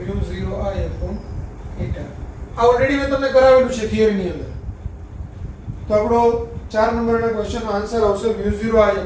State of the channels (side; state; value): both; identical; correlation 1.00